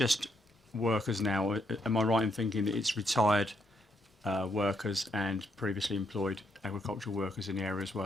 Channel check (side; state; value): both; normal; correlation 0.76